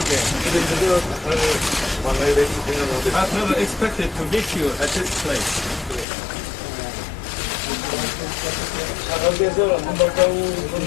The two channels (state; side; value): drops out; right; at 6.1 s